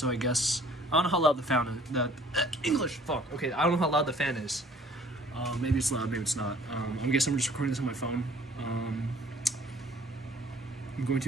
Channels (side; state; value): both; normal; correlation 0.55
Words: I guess I don't know how loud the fan is. English, fuck. Okay, I don't know how loud the fan is. Maybe it's loud, maybe it's not. I guess I'm just recording this on my phone. I'm going